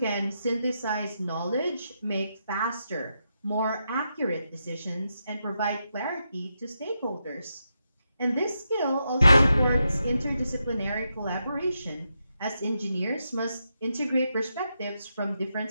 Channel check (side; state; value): both; inverted; correlation -0.84